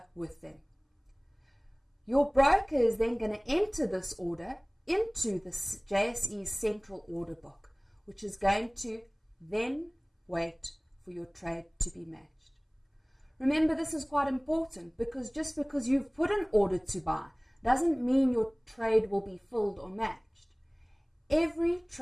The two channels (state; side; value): identical; both; correlation 1.00